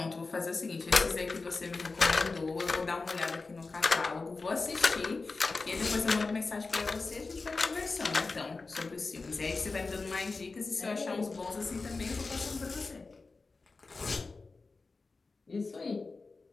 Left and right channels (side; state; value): right; quieter; 3.9 dB